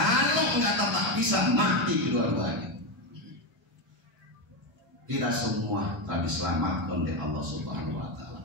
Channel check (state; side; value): normal; both; correlation 0.11